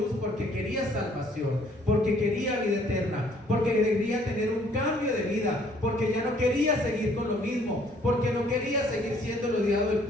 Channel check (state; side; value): normal; both; correlation 0.61